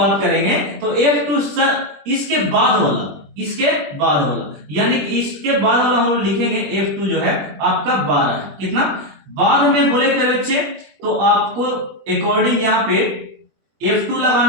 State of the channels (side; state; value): left; late; 21 ms